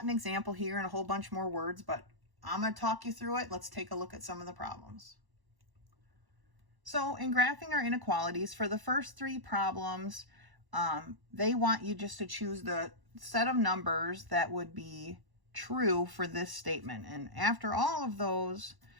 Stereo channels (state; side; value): late; left; 1.1 ms